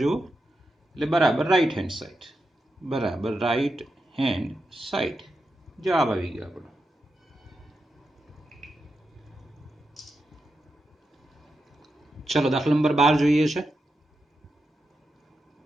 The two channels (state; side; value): normal; both; correlation 0.87